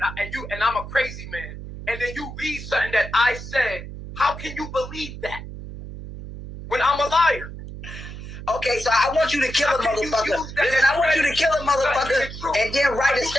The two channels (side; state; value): right; noise; hum, 11 dB below the sound